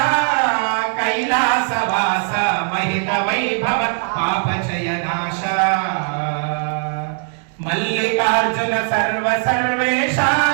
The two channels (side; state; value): left; silent; 57 dB below the other